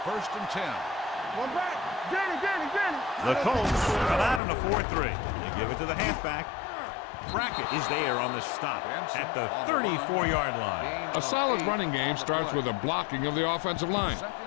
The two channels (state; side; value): drops out; right; at 4.4 s